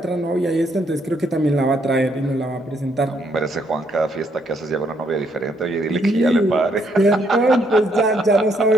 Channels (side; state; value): both; normal; correlation 0.72